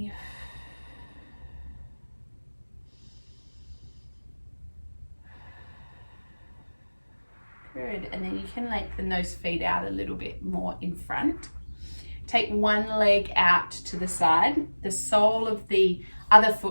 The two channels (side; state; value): both; inverted; correlation -1.00